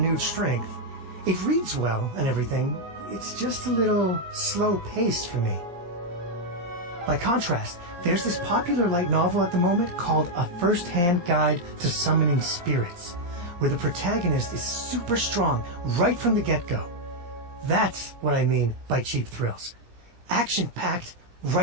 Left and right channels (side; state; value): left; late; 17 ms